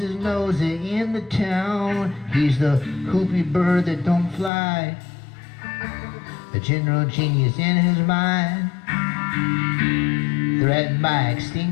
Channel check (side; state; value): right; drops out; at 4.5 s